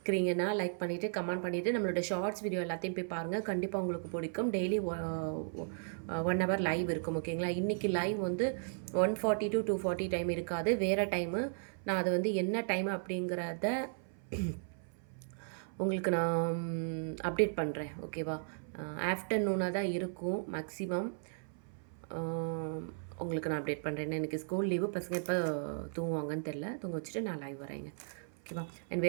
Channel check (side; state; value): left; silent; 54 dB below the other